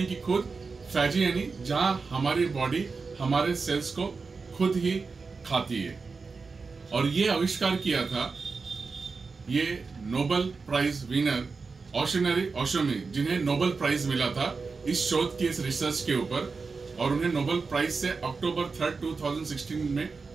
कि खुद, फैजी यानी जहां हमारी बॉडी हमारे सेल्स को खुद ही खाती है। और ये आविष्कार किया था ये नोबेल प्राइज विनर ओशोनरी ओशोमी, जिन्हें नोबेल प्राइज मिला था इस शोध की, इस रिसर्च के ऊपर। और उन्हें नोबेल प्राइज से अक्टूबर 3, 2016 में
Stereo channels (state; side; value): quieter; left; 4.5 dB